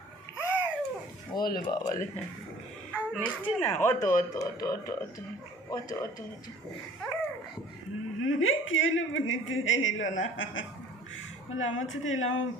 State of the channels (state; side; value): normal; both; correlation 0.50